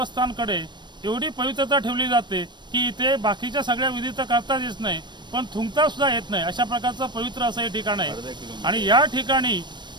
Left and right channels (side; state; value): left; late; 0.22 ms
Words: एवढी पवित्रता ठेवली जाते की इथे बाकीच्या सगळ्या विधी तर करताच येत नाही, पण थुंकता सुद्धा येत नाही, अशा प्रकारचं पवित्र असं हे ठिकाण आहे. आणि या ठिकाणी